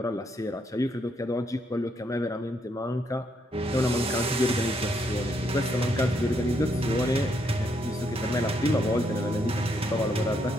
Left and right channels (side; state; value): both; normal; correlation 0.75